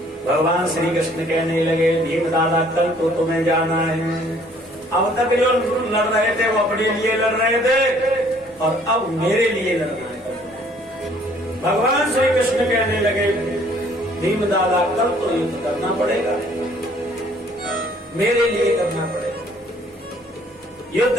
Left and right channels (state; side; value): normal; both; correlation 0.59